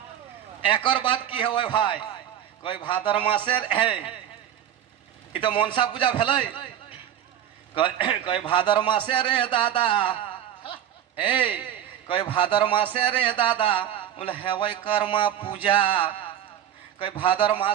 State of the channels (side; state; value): left; quieter; 10.5 dB